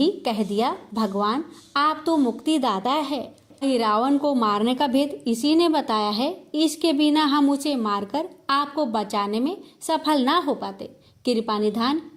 कह दिया, भगवान आप तो मुक्तिदाता है। रावण को मारने का भेद इसी ने बताया है। इसके बिना हम उसे मारकर आपको बचाने में सफल ना हो पाते। कृपा निधान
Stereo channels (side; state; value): both; identical; correlation 1.00